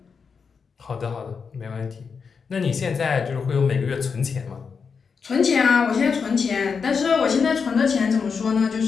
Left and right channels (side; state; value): right; quieter; 5.7 dB